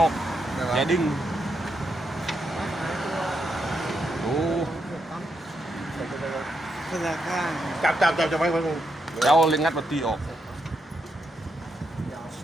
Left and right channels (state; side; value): normal; both; correlation 0.81